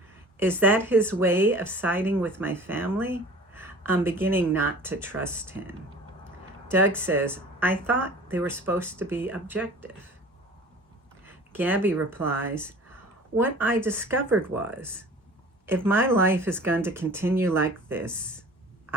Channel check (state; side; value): normal; both; correlation 0.44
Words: Is that his way of siding with my family? I'm beginning not to trust him. Doug says, I thought they were supposed to be objective. Gabby replies, what I discovered was, if my life is going to continue like this,